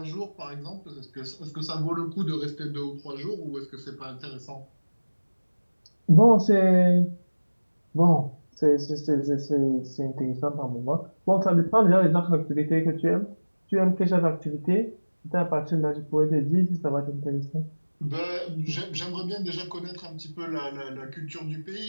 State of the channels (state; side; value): inverted; both; correlation -1.00